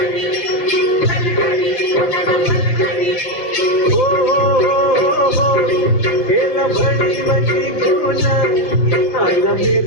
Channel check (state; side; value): late; right; 5.8 ms